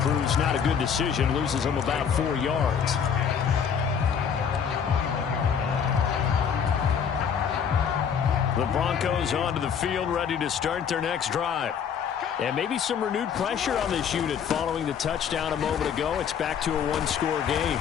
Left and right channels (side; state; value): right; quieter; 7.4 dB